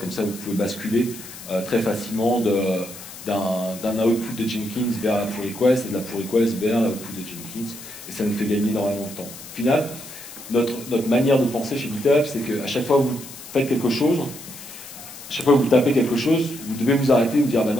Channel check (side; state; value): left; noise; hiss, 15 dB below the sound